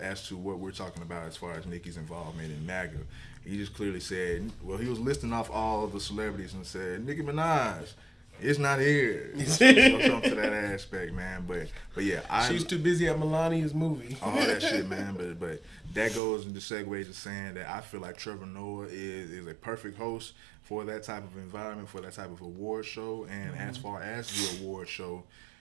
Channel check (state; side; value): drops out; left; at 16.2 s